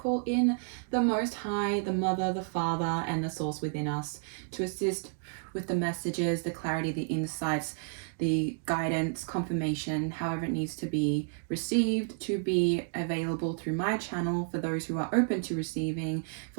in the Most High, the Mother, the Father, and the Source within us to assist with the messages, the clarity, the insights, the guidance, confirmation, however it needs to be received, to be available through my channel for those who are open to receiving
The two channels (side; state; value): left; silent; 57 dB below the other